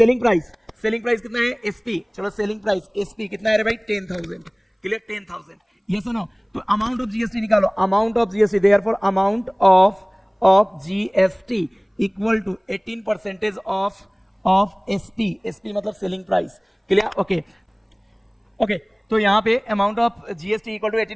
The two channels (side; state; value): both; identical; correlation 1.00